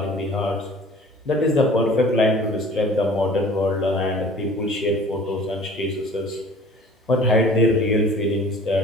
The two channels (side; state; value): both; normal; correlation 0.47